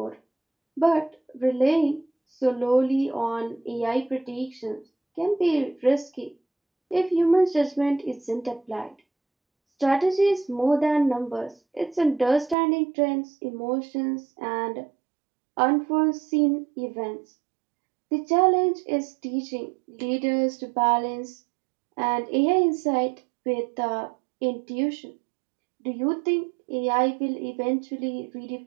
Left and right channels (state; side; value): drops out; left; at 12.6 s